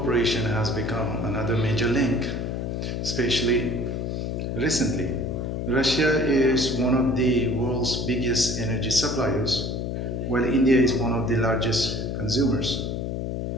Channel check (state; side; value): noise; left; hum, 3 dB below the sound